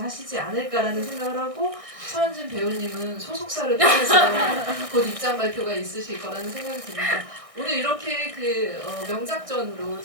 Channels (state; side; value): late; left; 1.6 ms